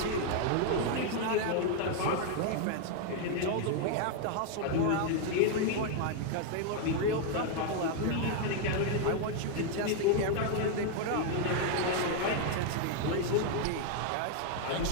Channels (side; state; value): both; different; correlation 0.00